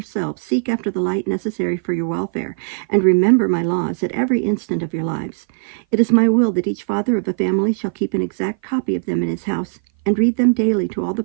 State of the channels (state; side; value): silent; left; 57 dB below the other